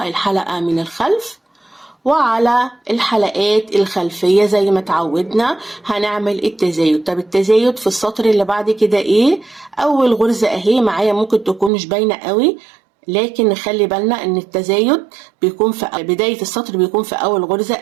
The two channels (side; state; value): left; drops out; at 11.7 s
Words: الحلقة من الخلف، وعلى الحلقات الخلفية زي ما اتعودنا هنعمل التزايد. طب التزايد في السطر اللي بعد كده ايه؟ اول غرزة اهي معايا ممكن تكون مش باينة قوي، لكن نخلي بالنا ان التزايد بيكون في بداية السطر، بيكون في اول غرزة